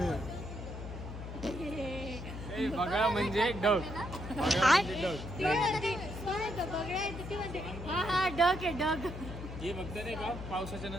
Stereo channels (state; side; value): noise; left; hum, 9 dB below the sound